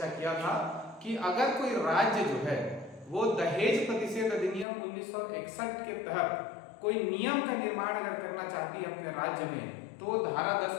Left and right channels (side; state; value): right; drops out; at 4.7 s